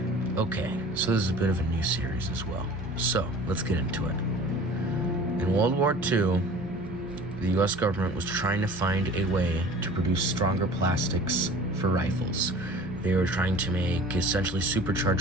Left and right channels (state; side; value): normal; both; correlation 0.43